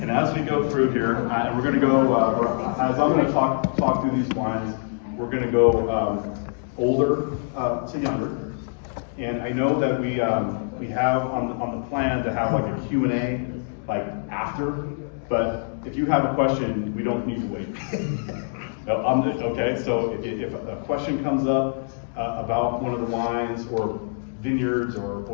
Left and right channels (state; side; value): silent; right; digital silence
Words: And as we go through here, and we're going to go, as I'm going to talk through these wines, we're going to go older to younger. And I know that we have on the plan to have like a Q&A like after, but if you have a question, we don't need to wait. No, okay, so if a question comes up about one of the wines or vineyards or